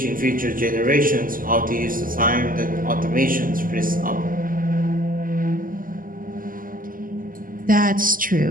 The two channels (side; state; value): left; late; 0.41 ms